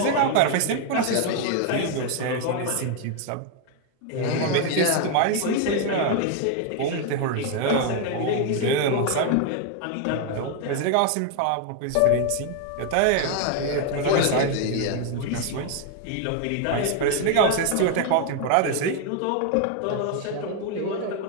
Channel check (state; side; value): different; both; correlation 0.01